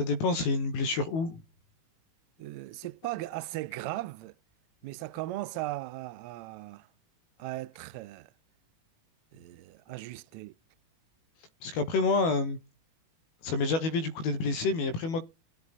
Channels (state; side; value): late; right; 18 ms